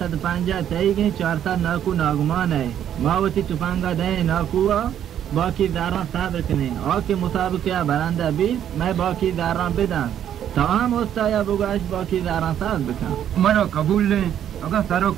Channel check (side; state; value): left; quieter; 10.1 dB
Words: पांजा तई गई 4 नाकू नागमान है मावती तुपांगा दे नाकुआ बाकी दारा साब रखने और के मुसाबका बरांदा भी मैं बाकी दारा बिदा तमाम होता या बुगाश बाकी दारा साब बिका मनो कबूल ले अगर सारो